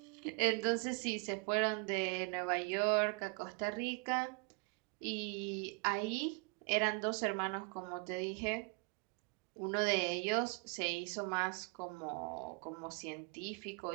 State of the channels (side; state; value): left; quieter; 31.7 dB